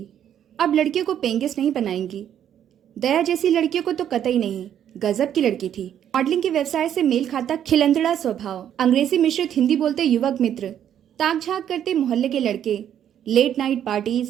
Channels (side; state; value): left; quieter; 10.0 dB